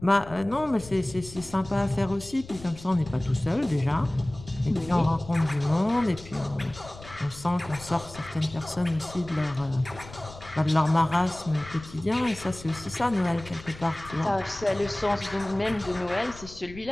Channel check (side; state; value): left; noise; rumble, 17 dB below the sound